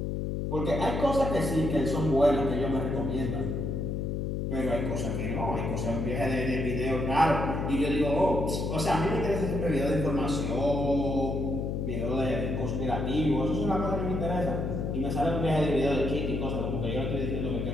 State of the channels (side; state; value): left; noise; hum, 1 dB below the sound